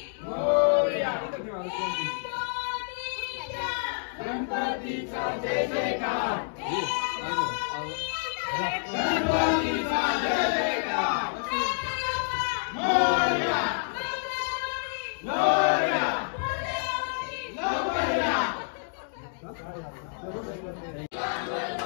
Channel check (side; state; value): right; silent; digital silence